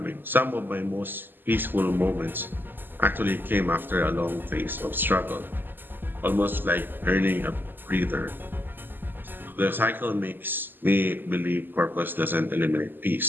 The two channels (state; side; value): late; left; 0.093 ms